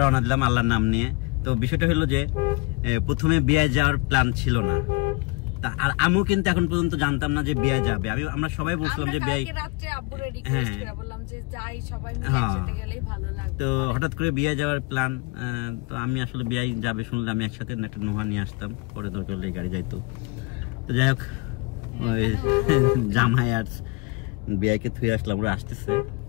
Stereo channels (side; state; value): right; quieter; 26.0 dB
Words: দিলাম আল্লাহর নাম নিয়ে তো বিষয়টা হলো যে প্রথমে বিয়ে যাওয়ার প্ল্যান ছিল না আর আমিও কিন্তু এখন পর্যন্ত জানতাম না যে বিয়ে যাবে আমরা সবাই বলছিলাম যে বিয়ে তো হঠাৎ করে বিয়ে যাওয়ার প্ল্যান তো আমি আসলে বিয়ে যাবে শুনলে আমি একসাথে একটা নোহা নিয়ে আসতাম পরে দরকার হলে গাড়ি যাইতো তো যাই হোক ওই জামাই আর বিয়াকে থুয়ে আসলাম ওরা আসতেছে